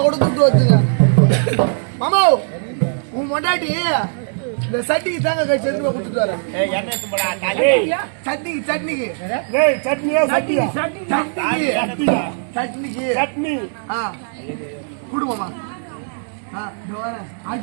கூட துட்டு வச்சுங்க மாமா. உன் மொண்டாட்டி இந்த சட்டிக்கு தாங்க கழிச்சு எடுத்து கொடுத்துட்டு வரேன். சட்னிக்கு சட்னிக்கு குடும்பமா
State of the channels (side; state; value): left; silent; digital silence